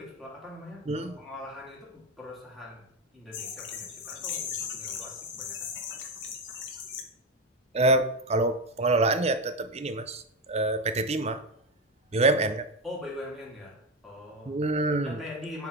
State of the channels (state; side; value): normal; both; correlation 0.12